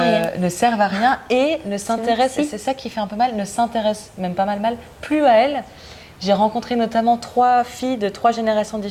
servent à rien et ne s'intéressent, et c'est ça qui fait un peu mal, ne s'intéressent même pas mal, plus à elles. J'ai rencontré notamment 3 filles de 3 générations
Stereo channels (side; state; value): both; identical; correlation 1.00